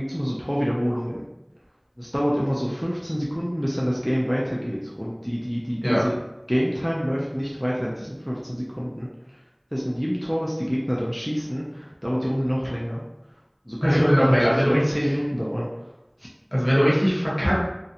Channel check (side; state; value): both; identical; correlation 1.00